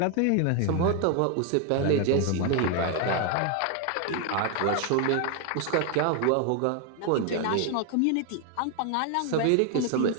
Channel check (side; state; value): both; different; correlation 0.01